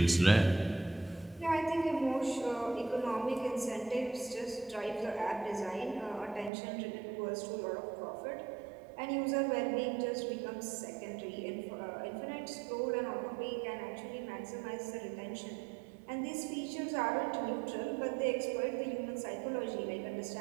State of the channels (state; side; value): drops out; left; at 6.5 s